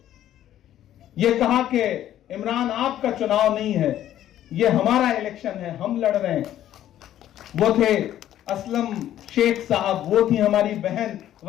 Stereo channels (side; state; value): right; quieter; 12.0 dB